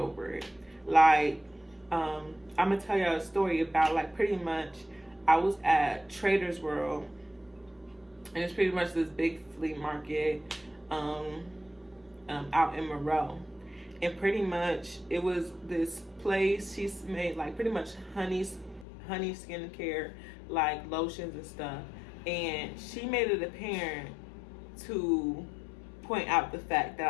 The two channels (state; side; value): drops out; right; at 18.9 s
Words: it. Like, I'm going to tell y'all a story about, like, pretty much I was at Trader's World, and it's pretty much this big flea market out in Monroe. And pretty much it was this place, she's made like pretty much honey skincare, like lotions and stuff. And she made it apparent to point out the fact that